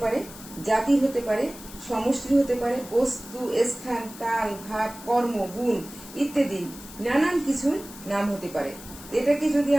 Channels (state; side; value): noise; left; hiss, 16 dB below the sound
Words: পারে, জাতির হতে পারে, সমষ্টির হতে পারে, বস্তু, স্থান, কাল, ভাব, কর্ম, গুণ ইত্যাদি নানান কিছুর নাম হতে পারে। এটাকে যদি